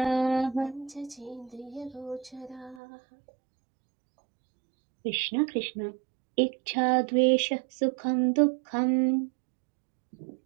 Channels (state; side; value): drops out; left; at 2.8 s